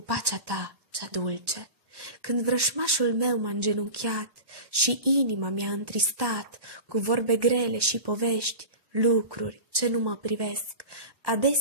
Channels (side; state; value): left; late; 1.1 ms